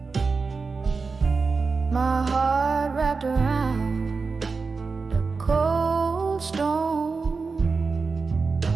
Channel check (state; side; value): quieter; left; 4.5 dB